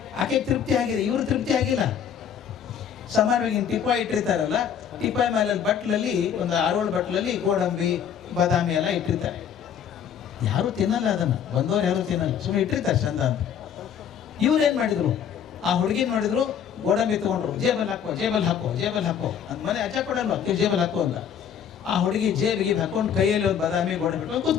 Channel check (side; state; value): right; quieter; 8.4 dB